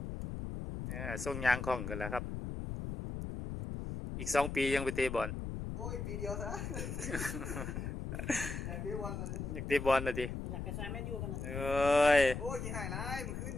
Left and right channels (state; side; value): noise; left; rumble, 5 dB below the sound